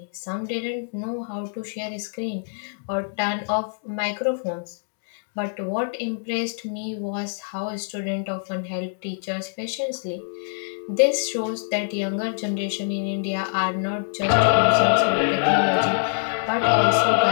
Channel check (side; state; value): right; silent; digital silence